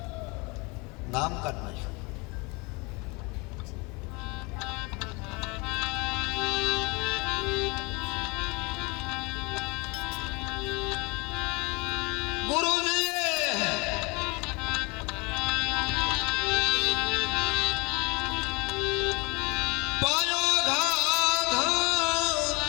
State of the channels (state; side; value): quieter; right; 27.9 dB